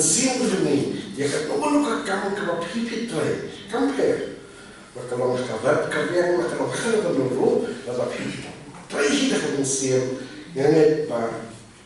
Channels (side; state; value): both; identical; correlation 1.00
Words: ini, ya kat nomor kamu kalau pipit tray, compare. Kalau kabar kabar kalau kalau dulu, lalu pipit tray kita kemensian, yang ni